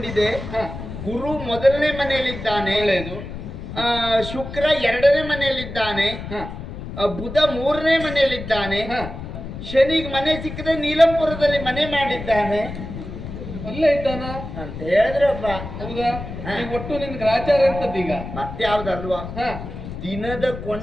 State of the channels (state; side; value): noise; left; rumble, 9 dB below the sound